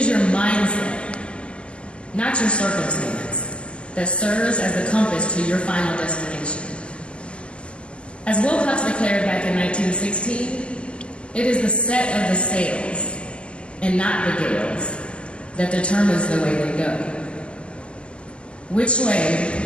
your mindset, not your circumstance, that serves as the compass to your final destination. As Will Hucks declared back in 1916, it is the set of the sails, and not the gales, that determines the way they go. Which way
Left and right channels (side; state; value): right; late; 0.053 ms